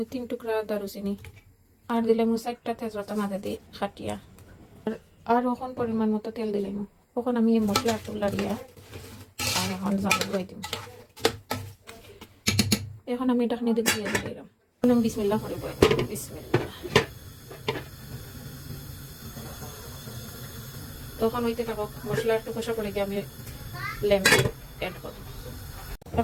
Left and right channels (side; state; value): both; identical; correlation 1.00